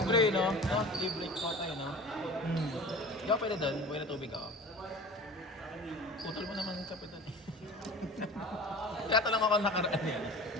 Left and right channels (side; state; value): both; normal; correlation 0.38